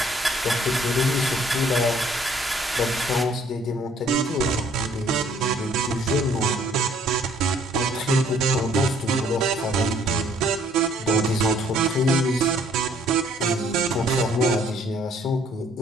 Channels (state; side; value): normal; both; correlation 0.61